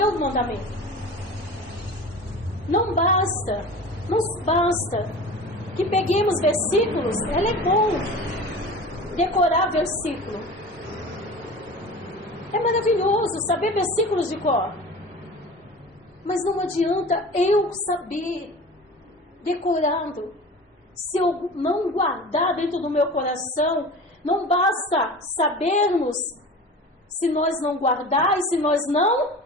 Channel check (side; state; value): both; normal; correlation 0.36